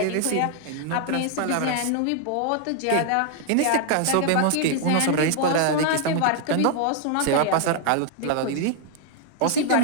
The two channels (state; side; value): different; both; correlation 0.00